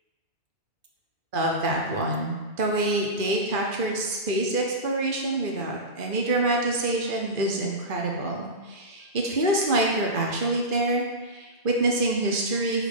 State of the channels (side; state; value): left; late; 2.4 ms